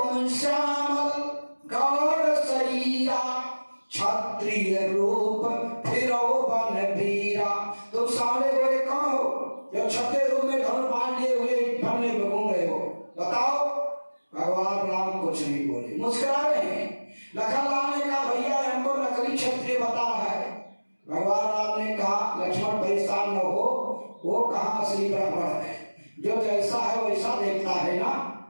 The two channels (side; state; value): both; inverted; correlation -1.00